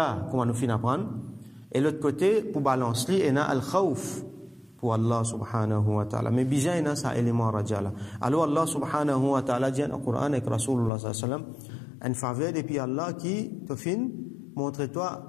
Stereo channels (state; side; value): drops out; right; at 10.9 s